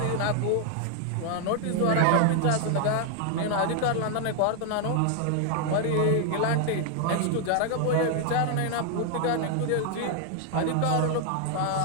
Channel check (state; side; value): different; both; correlation 0.00